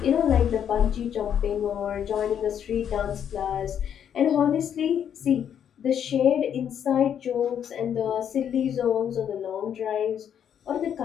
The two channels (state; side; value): quieter; right; 8.9 dB